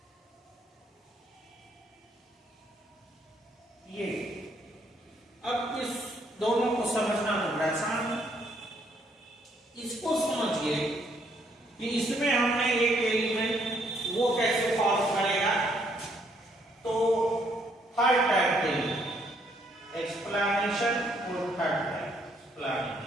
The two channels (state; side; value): normal; both; correlation 0.69